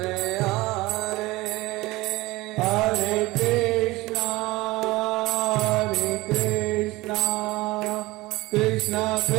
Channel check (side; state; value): left; quieter; 20.3 dB